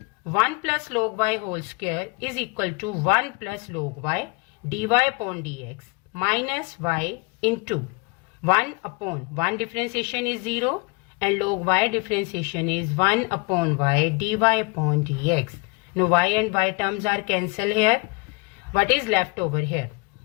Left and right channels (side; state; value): right; quieter; 29.5 dB